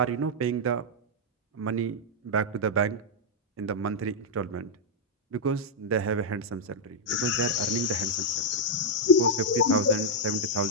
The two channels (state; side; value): normal; both; correlation -0.03